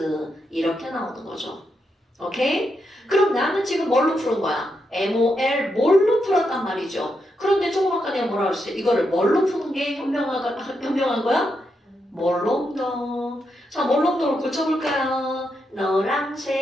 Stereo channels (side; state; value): both; normal; correlation 0.83